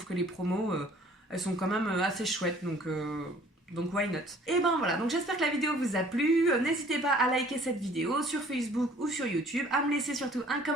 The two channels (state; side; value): normal; both; correlation 0.55